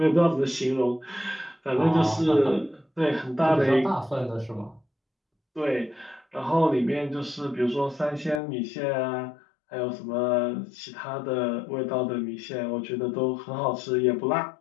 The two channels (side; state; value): right; drops out; at 8.4 s